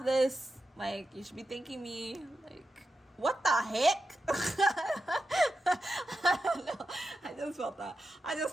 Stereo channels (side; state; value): both; normal; correlation 0.89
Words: this. Like, you should be thanking me. Like, what the heck? No, I just felt